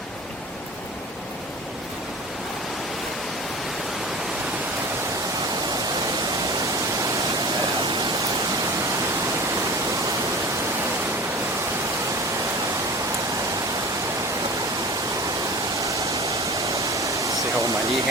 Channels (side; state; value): both; normal; correlation 0.38